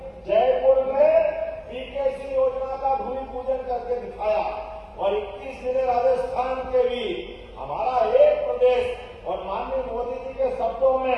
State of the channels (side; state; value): both; identical; correlation 1.00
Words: जयपुर में पीकेसी योजना का भूमि पूजन करके दिखाया और 21 जिले राजस्थान के भी हमारा एक प्रदेश और माननीय मोदी जी के शब्दों